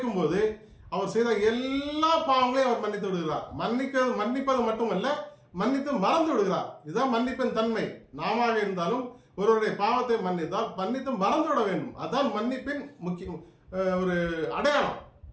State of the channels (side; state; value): both; identical; correlation 1.00